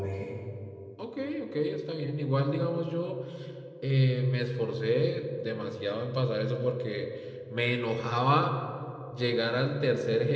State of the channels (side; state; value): both; identical; correlation 1.00